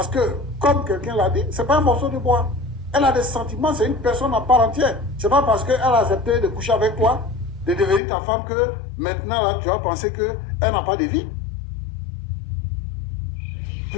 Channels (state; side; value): drops out; right; at 8.0 s